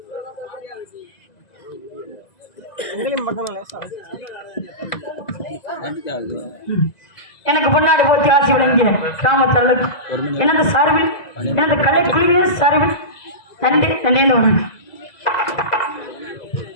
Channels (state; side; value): late; right; 2.0 ms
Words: எனக்கு பொன்னாடி போத்தி ஆட்சி வழங்கிய கிராமத்தல்ல எனது சார்பில் எனது கலை குழுவினர் சார்பில் நன்றி நன்றி வணக்கம்.